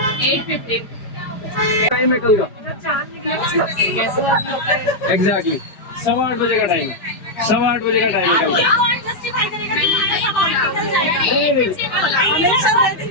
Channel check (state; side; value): late; right; 5.0 ms